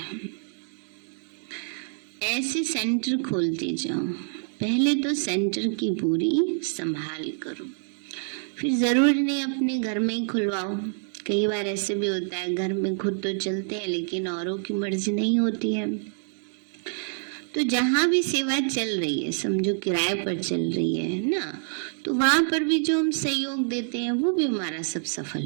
ऐसे सेंटर खोलते जाओ। पहले तो सेंटर की पूरी संभाल करो, फिर जरूरी नहीं अपने घर में ही खुलवाओ। कई बार ऐसे भी होता है, घर में खुद तो चलते हैं लेकिन औरों की मर्जी नहीं होती है। तो जहाँ भी सेवा चल रही है, समझो किराए पर चल रही है ना, तो वहां पर भी जो हम सहयोग देते हैं वो भी हमारा सब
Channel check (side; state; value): left; silent; digital silence